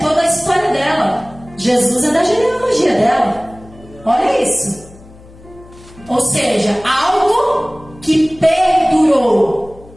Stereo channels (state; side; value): noise; left; hum, 22 dB below the sound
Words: a história dela. Jesus é da genealogia dela. Olha isso. Ou seja, algo que perdurou.